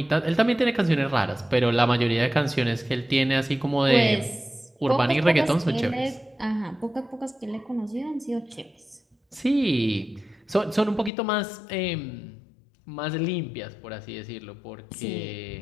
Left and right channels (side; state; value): right; drops out; at 11.1 s